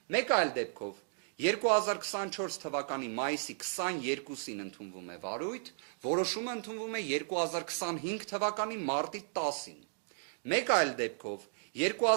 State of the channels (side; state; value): left; silent; digital silence